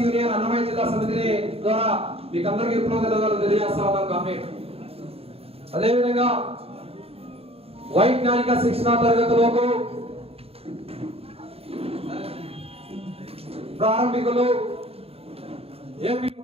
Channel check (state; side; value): late; left; 0.28 ms